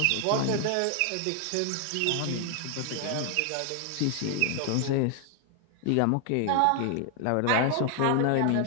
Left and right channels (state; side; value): different; both; correlation 0.00